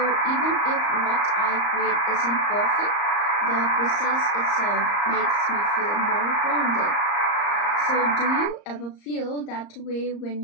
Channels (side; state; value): right; late; 34 ms